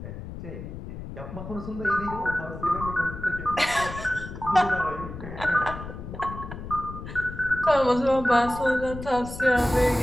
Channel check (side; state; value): left; noise; rumble, 10 dB below the sound